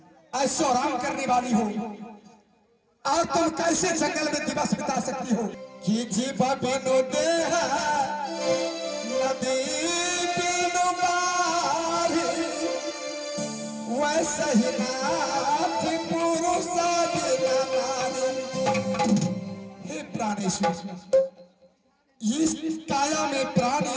ऐशो आराम करने वाली हो, और तुम कैसे जंगल में दिवस बिता सकती हो कि जीवा बिनो देह नदी बिनो बारी, वैसे ही नाथ पुरुष बिना नारी। हे प्राणेश्वर, इस काया में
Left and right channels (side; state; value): both; identical; correlation 1.00